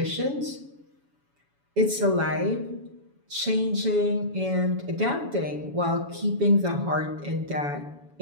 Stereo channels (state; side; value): late; left; 7.1 ms